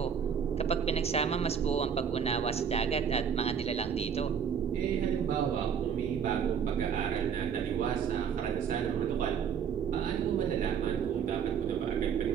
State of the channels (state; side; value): quieter; left; 7.5 dB